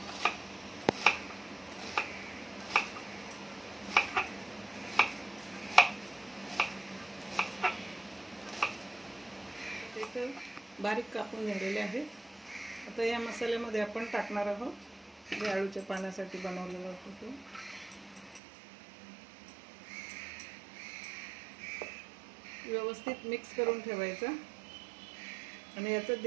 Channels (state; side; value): drops out; left; at 18.4 s